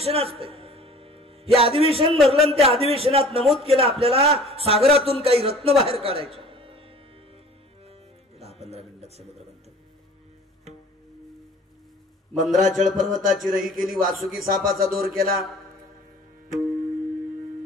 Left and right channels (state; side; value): normal; both; correlation 0.47